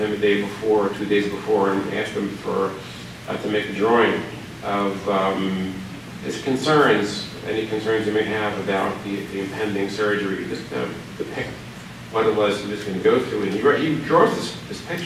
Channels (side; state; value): both; identical; correlation 1.00